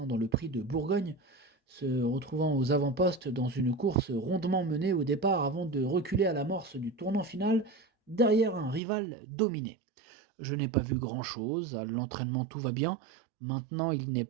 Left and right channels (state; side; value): drops out; left; at 8.8 s